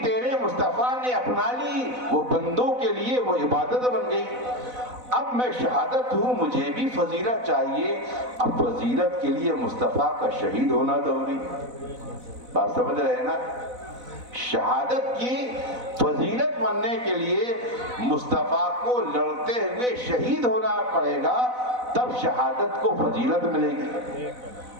تیرے مصطفیٰ نے اپنا لی وہ بندوں کے لیے وہ عبادت بن گئی۔ اب میں شہادت ہوں، مجھے بھی فضیلت چاہیے، اب فضیلت کے لیے مصطفیٰ کا شہید ہونا ضروری۔ بات سمجھ رہے ہیں نا؟ شہادت کی فضیلت بننے کے لیے مصطفیٰ کو لڑتے ہوئے شہید ہونا پڑے گا، تب شہادت کو فضیلت ملے گی۔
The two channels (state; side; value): late; left; 4.0 ms